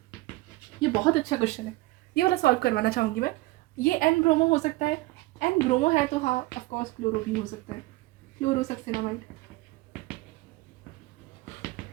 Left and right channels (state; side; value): quieter; left; 20.5 dB